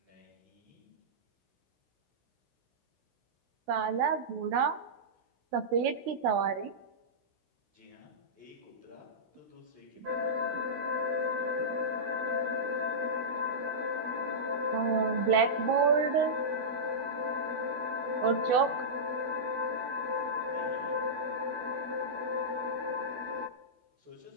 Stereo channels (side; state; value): left; late; 16 ms